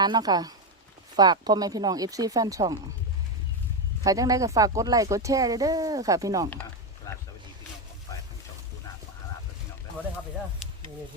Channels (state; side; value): normal; both; correlation 0.09